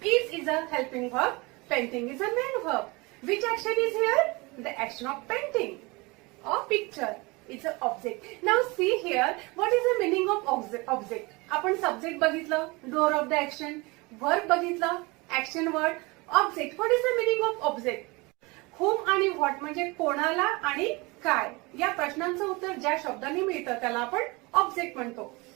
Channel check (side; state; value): left; quieter; 25.4 dB